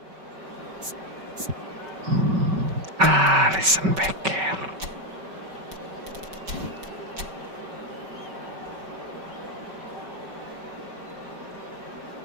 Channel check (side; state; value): left; late; 5.3 ms